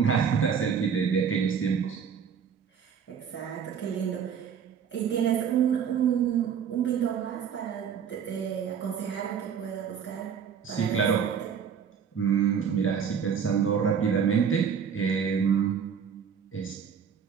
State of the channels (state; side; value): quieter; left; 7.3 dB